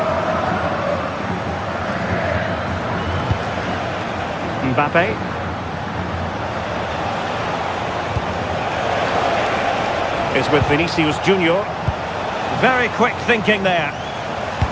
Mbappe. Is with Vinicius Junior. Very quick thinking there.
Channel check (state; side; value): identical; both; correlation 1.00